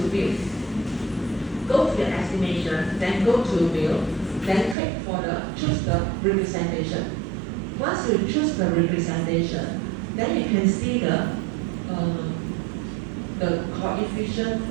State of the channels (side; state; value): left; drops out; at 4.8 s